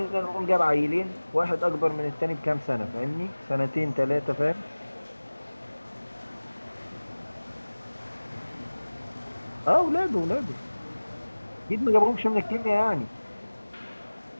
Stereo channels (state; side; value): inverted; both; correlation -1.00